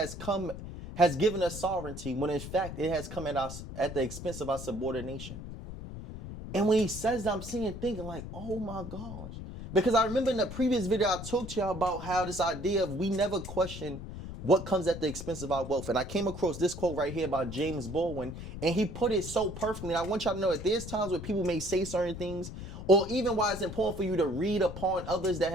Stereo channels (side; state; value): left; noise; rumble, 10 dB below the sound